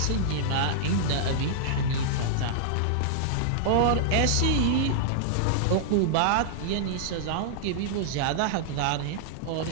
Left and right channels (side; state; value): both; different; correlation -0.01